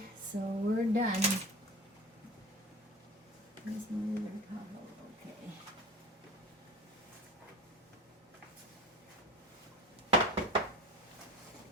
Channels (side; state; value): both; normal; correlation 0.35